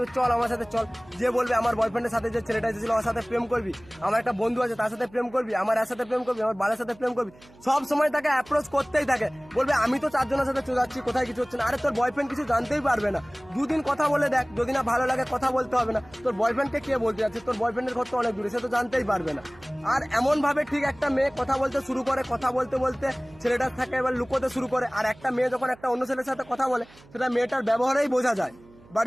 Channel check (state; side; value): noise; right; hum, 25 dB below the sound